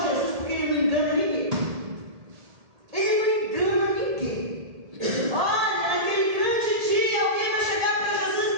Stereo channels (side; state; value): left; late; 1.8 ms